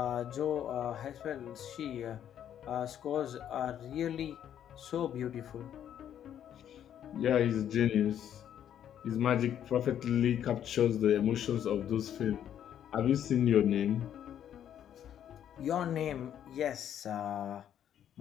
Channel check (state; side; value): quieter; right; 10.0 dB